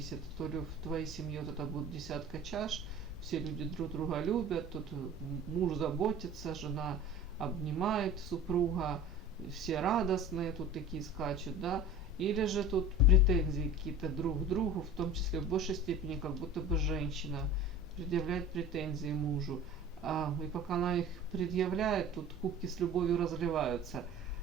То ли в твоей семье вот это будет десятка чаш, все люди друг друга любят, тут муж заботится, жена обнимает супруга, все радостные, тут такие скачут, да. Или же тут претензии какие-то друг к другу, в том числе в большей степени, как будто бы женщина предъявляет претензии мужу. И пока она их предъявляет, тут кубки с любовью разливаются.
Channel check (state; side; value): normal; both; correlation 0.38